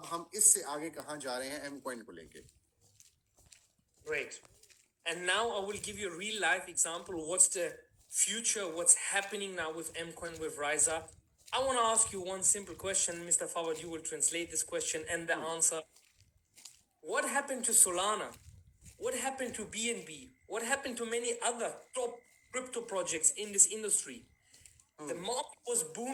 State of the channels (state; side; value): identical; both; correlation 1.00